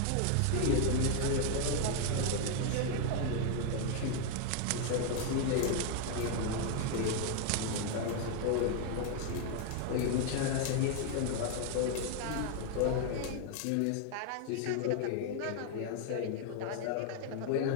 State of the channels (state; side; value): different; both; correlation 0.00